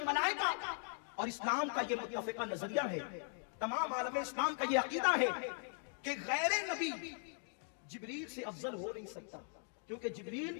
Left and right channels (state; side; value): silent; right; 51 dB below the other